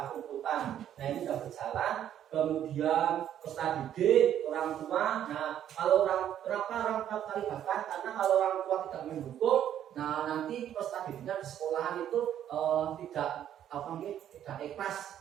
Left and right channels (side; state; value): left; quieter; 10.5 dB